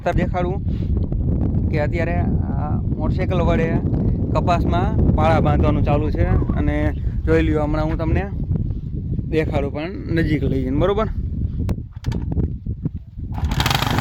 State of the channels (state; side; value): identical; both; correlation 1.00